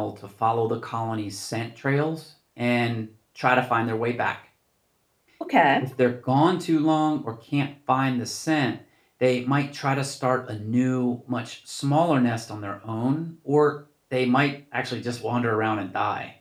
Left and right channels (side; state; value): both; identical; correlation 1.00